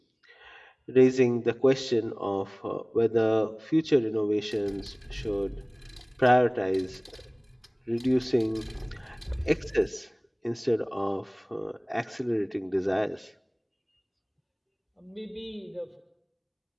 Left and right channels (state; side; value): identical; both; correlation 1.00